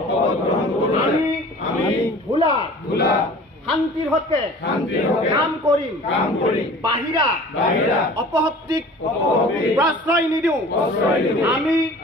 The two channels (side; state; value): both; normal; correlation 0.44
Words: আমি ভোলাৰ শান্তিৰ হকে কাম কৰিম, বাহিৰা অপশক্তিক প্ৰশ্ৰয় নিদিওঁ। আমি